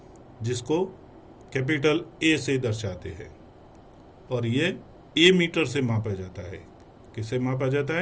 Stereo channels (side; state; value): both; identical; correlation 1.00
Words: जिसको कैपिटल A से दर्शाते हैं और ये A मीटर से मापा जाता है। किसे मापा जाता